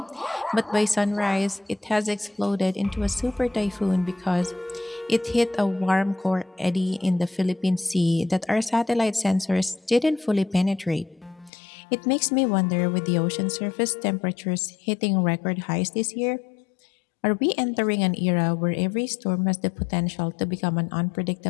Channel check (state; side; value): drops out; right; at 11.5 s